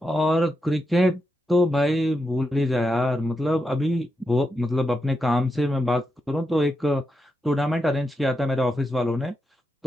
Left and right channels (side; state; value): both; normal; correlation 0.85